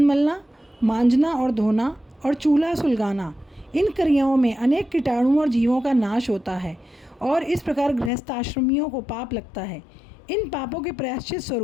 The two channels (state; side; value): drops out; right; at 8.1 s